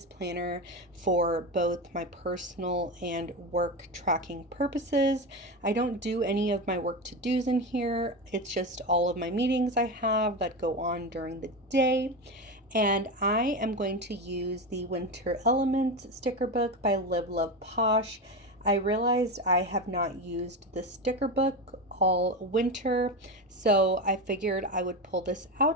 planner for both my personal and work tracking purposes. I don't do any of my work to-dos in here. It's just all of my meetings I have that go on during the day. And I am going to use the Winter Elements sticker book by Live.Love.Posh. I realized I have not used the sticker book all winter, so I figured I would pull this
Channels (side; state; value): both; normal; correlation 0.19